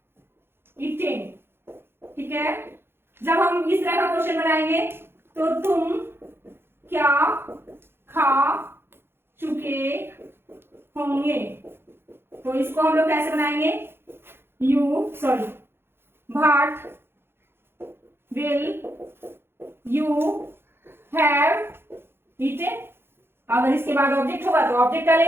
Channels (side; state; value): left; late; 0.11 ms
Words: ईटेन, ठीक है। जब हम इस तरह का क्वेश्चन बनाएंगे तो तुम क्या खा चुके होंगे, तो इसको हम लोग कैसे बनाएंगे, what will you have eaten. अगर इसके बाद ऑब्जेक्ट होगा तो ऑब्जेक्ट